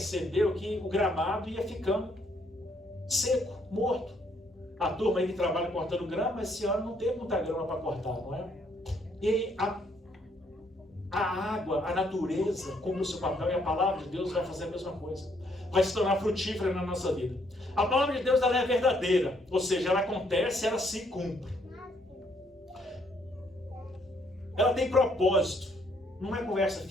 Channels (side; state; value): both; normal; correlation 0.70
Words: que o gramado ia ficando seco, morto. A turma aí que trabalha cortando grama, esse ano não teve muita grama para cortar, não é? E a água, a natureza, cumpre o seu papel, e a palavra de Deus vai fazer a mesma coisa. Vai se tornar frutífera na nossa vida. A palavra de Deus, ela é verdadeira, ou seja, ela acontece, ela se cumpre. Ela tem propósito. Não é conversa